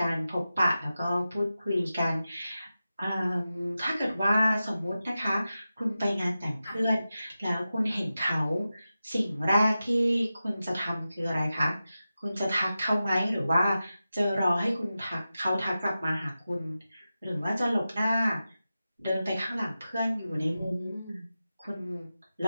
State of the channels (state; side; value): inverted; both; correlation -0.93